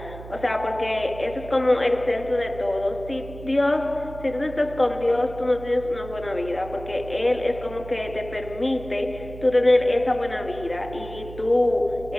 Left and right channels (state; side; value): noise; right; hum, 14 dB below the sound